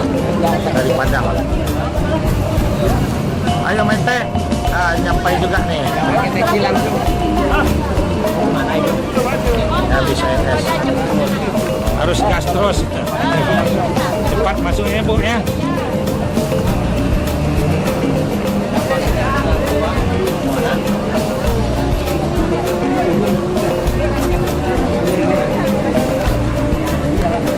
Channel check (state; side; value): identical; both; correlation 1.00